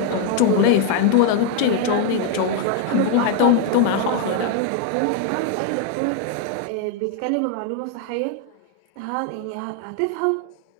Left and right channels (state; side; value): different; both; correlation 0.00